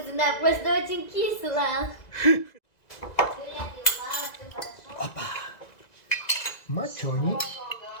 просто очень кисло. Мацони.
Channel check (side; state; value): right; late; 1.9 ms